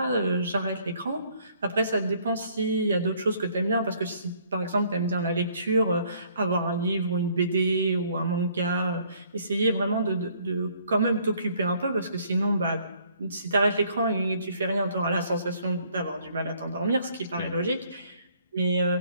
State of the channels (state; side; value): inverted; both; correlation -0.63